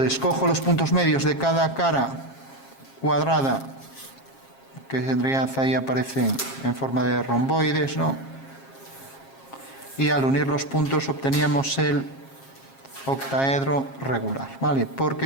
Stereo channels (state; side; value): late; right; 7.4 ms